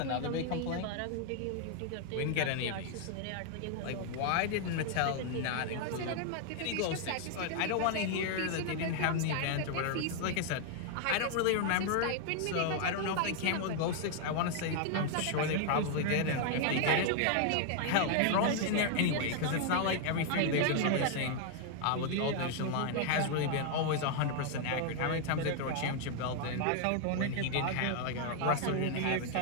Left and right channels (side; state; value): both; different; correlation 0.00